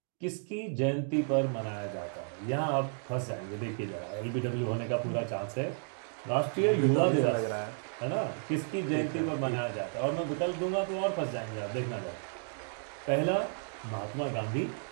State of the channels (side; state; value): left; silent; 56 dB below the other